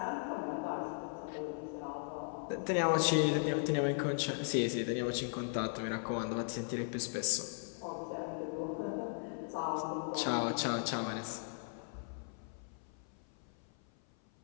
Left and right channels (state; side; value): silent; right; 53 dB below the other